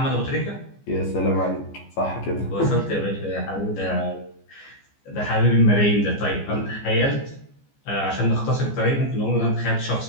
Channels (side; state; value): right; late; 14 ms